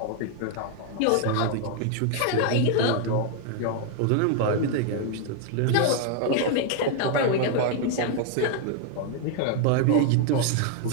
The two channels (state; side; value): different; both; correlation 0.00